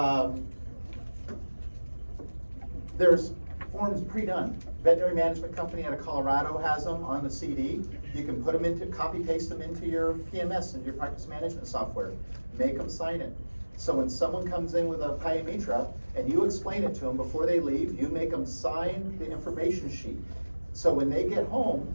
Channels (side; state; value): both; inverted; correlation -1.00